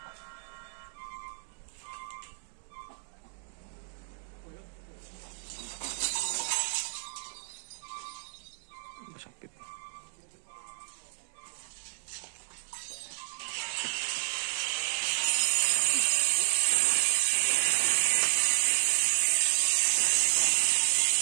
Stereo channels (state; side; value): silent; left; 57 dB below the other